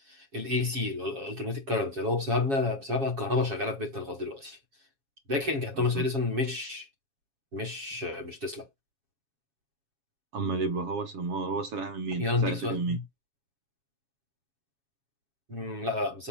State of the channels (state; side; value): late; left; 7.3 ms